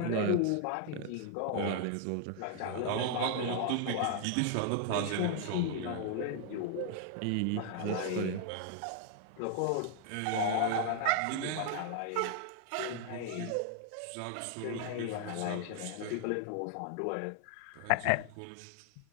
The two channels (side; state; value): both; different; correlation 0.00